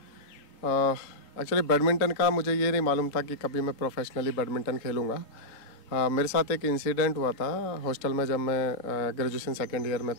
एक्चुअली बैडमिंटन का मुझे ये नहीं मालूम था कि कभी मैं प्रोफेशनली बैडमिंटन खेलूँगा। मेरे साथ एक इंसिडेंट हुआ था हॉस्टल में, जब मैं ग्रेजुएशन सेकेंड ईयर में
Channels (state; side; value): late; right; 3.7 ms